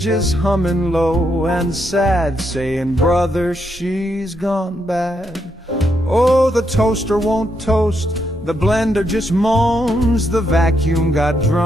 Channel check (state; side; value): normal; both; correlation 0.79